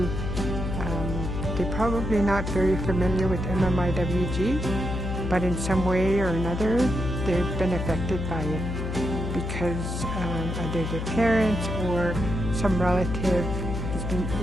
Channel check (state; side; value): noise; left; hum, 4 dB below the sound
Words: they're probably not very familiar with MMIWG, but in some way or another, they've been affected by it because either their parents or some relative has been